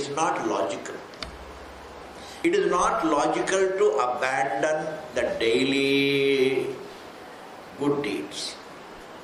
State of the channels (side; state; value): both; identical; correlation 1.00